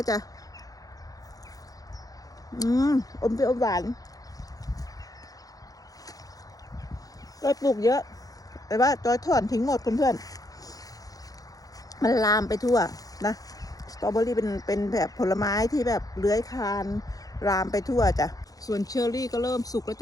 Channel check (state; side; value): late; right; 0.17 ms